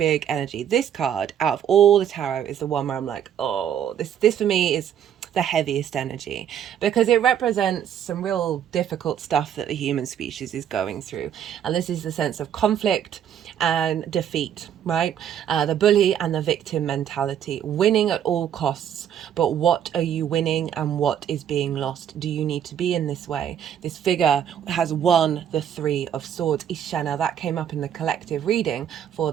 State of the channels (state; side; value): quieter; left; 9.4 dB